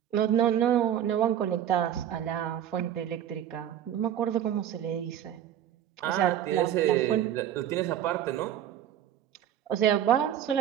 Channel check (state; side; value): quieter; left; 10.4 dB